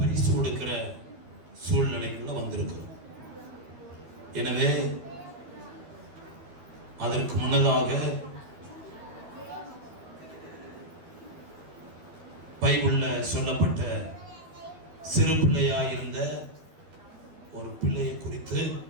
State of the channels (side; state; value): left; late; 12 ms